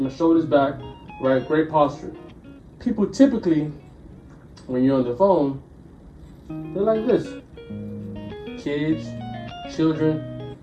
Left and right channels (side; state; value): both; identical; correlation 1.00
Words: shoulders back, right? Great posture. People typically, when you're on the phone, they're like this. Kids, children,